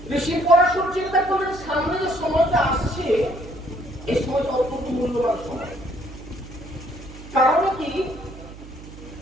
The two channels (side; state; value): right; noise; hum, 16 dB below the sound